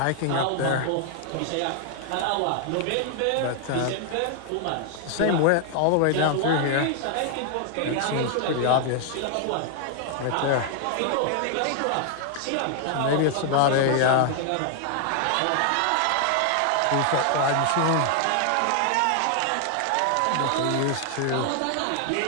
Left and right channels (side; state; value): both; different; correlation 0.00